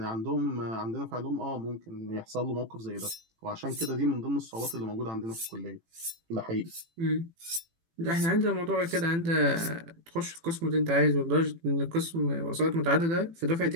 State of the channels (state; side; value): late; left; 18 ms